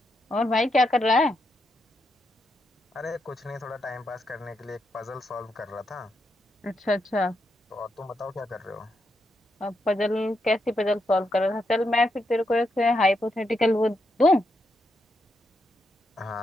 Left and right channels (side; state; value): both; normal; correlation 0.82